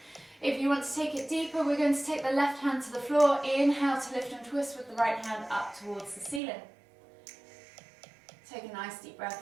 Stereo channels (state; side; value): drops out; left; at 6.4 s